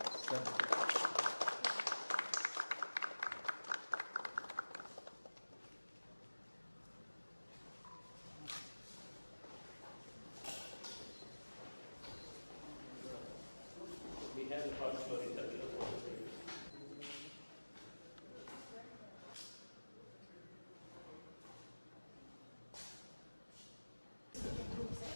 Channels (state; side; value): inverted; both; correlation -1.00